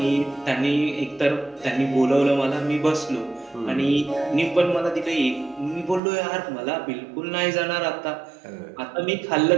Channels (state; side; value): drops out; left; at 6.0 s